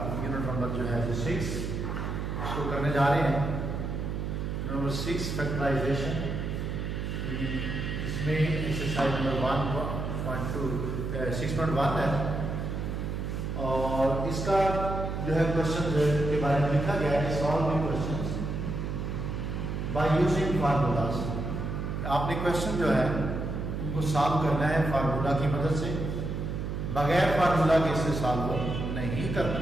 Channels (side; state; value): right; noise; hum, 3 dB below the sound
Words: यूनिट नंबर जो है 6 उसको करने जा रहे हैं। Number 6 factorisation. इसमें एक्सरसाइज नंबर 1.2 6.1 है और इसका जो है क्वेश्चन के बारे में लिखा गया है solving questions by using formulas. आपने क्वेश्चन जो है उनको सॉल्व करना है फार्मूला की मदद से, बगैर फार्मूला के इसे सॉल्व नहीं करना।